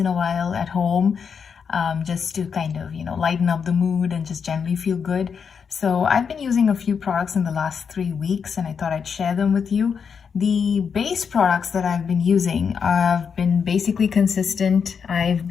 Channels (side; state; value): right; quieter; 6.4 dB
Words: a while at home, just to kind of, lighten up the mood and just generally feel good. So I've been using a few products in the last 3 weeks and I thought I'd share them with you. The base products that I've been using have been basically consistent. I've